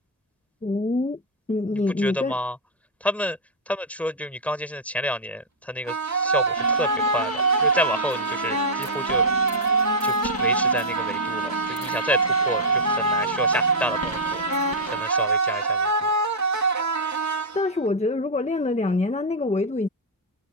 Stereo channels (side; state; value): both; normal; correlation -0.06